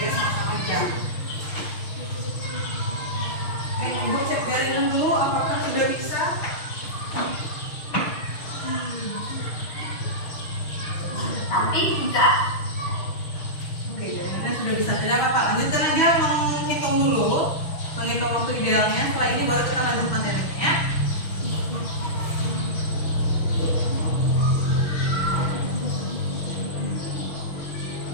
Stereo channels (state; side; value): late; right; 6.3 ms